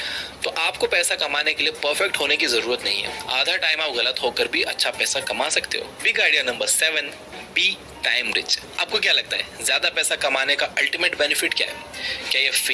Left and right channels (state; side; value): identical; both; correlation 1.00